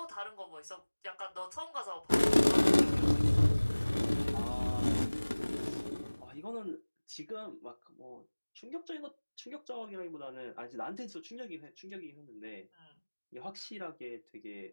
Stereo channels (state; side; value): inverted; both; correlation -1.00